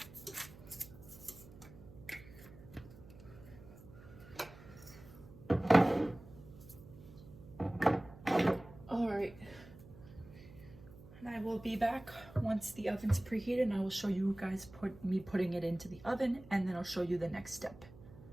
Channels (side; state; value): right; noise; hum, 19 dB below the sound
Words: All right, and I will be back once the oven's preheated, and I will show you guys me putting it into the oven, and then I'll show you the next step.